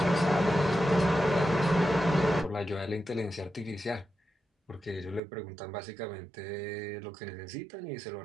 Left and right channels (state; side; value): drops out; left; at 5.2 s